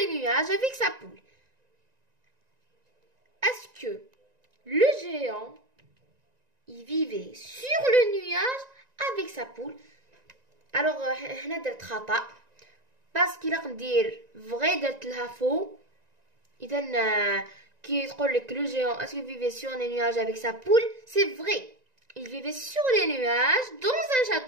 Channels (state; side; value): late; left; 1.9 ms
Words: nuages avec sa poule. Est-ce que le géant il vivait sur le nuage avec sa poule? Alors هنا درت خطأ باسكو لا ندير فغي درت لها فو. اذا كي تقول لك لو géant est-ce qu'il vivait sur les nuages avec sa poule, c'est vrai, il vivait sur les nuages dans un